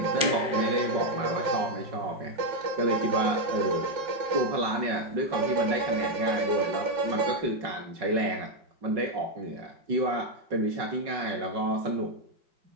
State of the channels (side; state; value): left; late; 5.4 ms